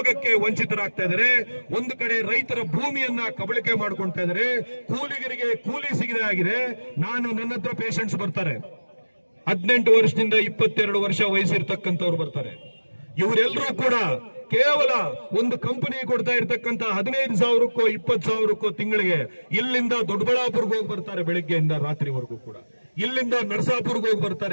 ವಂಚಿತರಾಗ್ತಾ ಇದ್ದಾರೆ. ಒಂದು ಕಡೆ ರೈತರ ಭೂಮಿಯನ್ನ ಕಬಳಿಕೆ ಮಾಡ್ಕೊಳ್ತಾ ಇದ್ದಾರೆ, ಕೂಲಿಗರಿಗೆ ಕೂಲಿ ಸಿಗದೆ ಆಗಿದೆ. ನನ್ನ ಹತ್ರ ಪೇಷಂಟ್ಸ್ ಬರ್ತಾರೆ, 18 ವರ್ಷದಿಂದ 22 ವರ್ಷ ವಯಸ್ಸಿರ್ತಕ್ಕಂಥವ್ರು ಬರ್ತಾರೆ. ಇವರೆಲ್ಲರೂ ಕೂಡ ಕೇವಲ ಒಂದು ಕಂಪನಿ ಕೊಡ್ತಾ ಇರ್ತಕ್ಕಂಥ 15,000ಕ್ಕೋ 20,000ಕ್ಕೋ ತಿಂಗಳಿಗೆ ಇಲ್ಲಿಂದ ದೊಡ್ಡಬಳ್ಳಾಪುರ್ಗೆ ಹೋಗಿ ಬರ್ತಾರೆ ಬೆಳಿಗ್ಗೆಯಿಂದ ರಾತ್ರಿವರೆಗೂ ಕೂಡ. ಇಲ್ಲಿಂದ ನರಸಾಪುರ್ಗೆ ಹೋಗಿ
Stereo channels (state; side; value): inverted; both; correlation -1.00